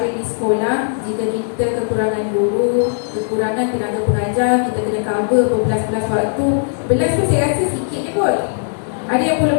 di sekolah. Jika kita kekurangan guru, kekurangan tenaga pengajar, kita kena cover berbelas-belas waktu. Belas tu saya rasa sikit je kot. Ada yang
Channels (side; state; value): right; silent; 67 dB below the other